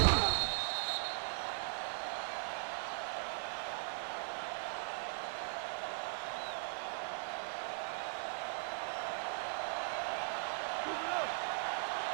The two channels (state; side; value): silent; left; 52 dB below the other